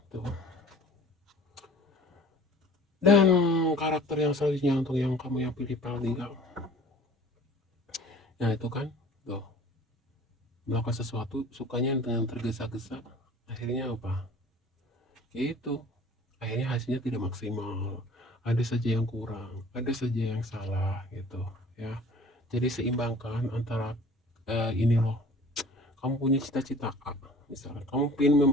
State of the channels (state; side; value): normal; both; correlation 0.47